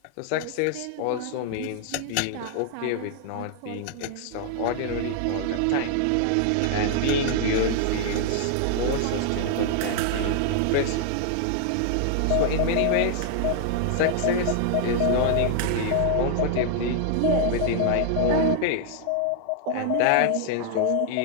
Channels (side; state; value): both; different; correlation 0.00